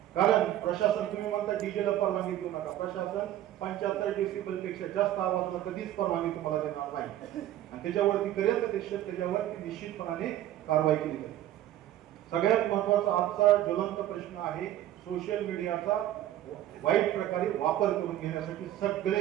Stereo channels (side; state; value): left; quieter; 13.0 dB